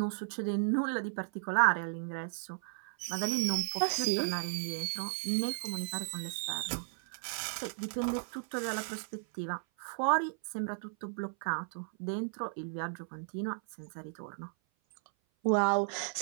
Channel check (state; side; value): silent; left; 55 dB below the other